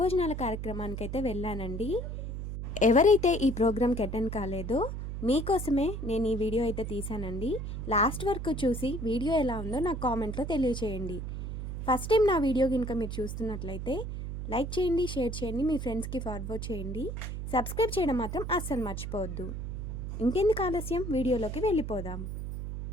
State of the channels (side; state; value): right; noise; hum, 5 dB below the sound